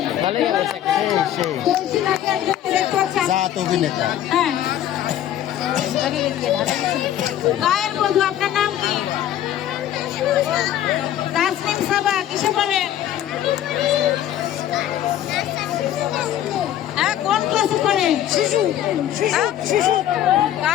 ভালোই অবস্থা। জাত অভিনেতা হ্যাঁ। গায়ের বধূ। আপনার নাম কি? তাসনিম সাবা। কিসে পড়েন? হ্যাঁ, কোন ক্লাসে পড়েন? শিশু।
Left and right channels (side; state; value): right; quieter; 11.6 dB